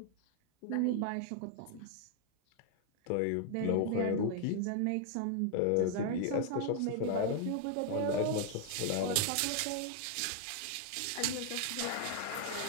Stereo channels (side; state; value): both; different; correlation 0.00